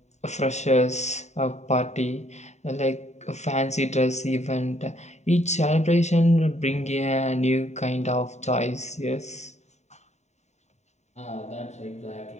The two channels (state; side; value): late; right; 0.33 ms